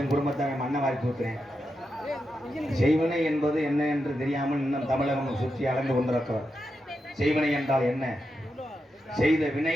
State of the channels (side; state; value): both; normal; correlation 0.87